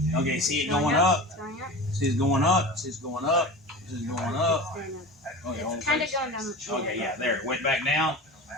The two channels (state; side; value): normal; both; correlation 0.32